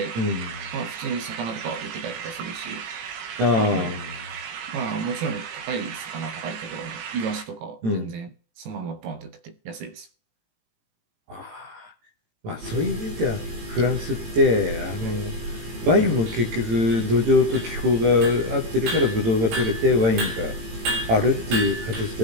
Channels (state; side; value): late; left; 18 ms